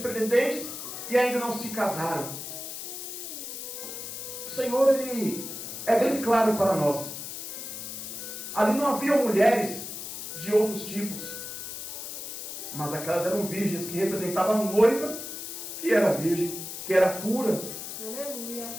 e ainda não se casaram. O Senhor, Ele é bem claro para nós. Ali não havia mulheres de outros tipos, mas aquelas eram virgens que representavam a noiva, que era virgem, que era pura. Aleluia.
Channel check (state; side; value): noise; left; hiss, 8 dB below the sound